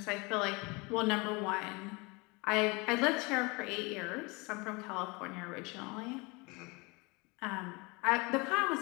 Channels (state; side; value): quieter; right; 26.9 dB